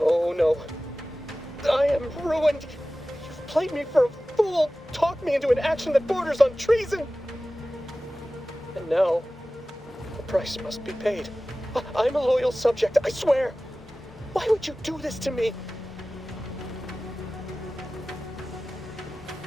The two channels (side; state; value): both; normal; correlation 0.96